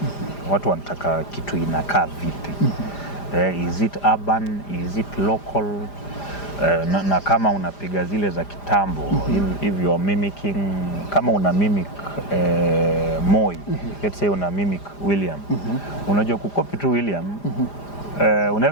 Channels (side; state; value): right; late; 5.0 ms